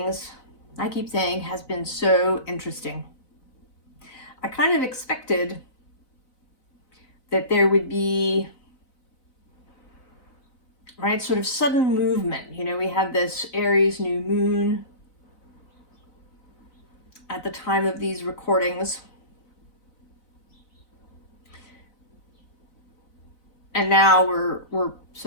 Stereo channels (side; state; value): right; late; 4.0 ms